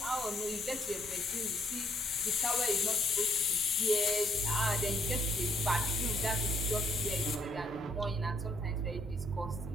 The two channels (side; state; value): both; normal; correlation 0.67